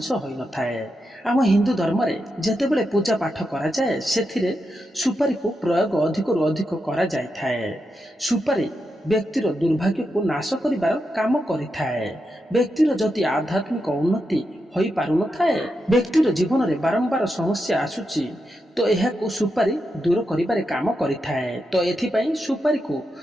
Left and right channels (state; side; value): normal; both; correlation 0.86